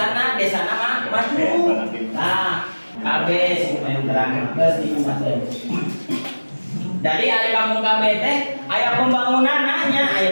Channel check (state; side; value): inverted; both; correlation -1.00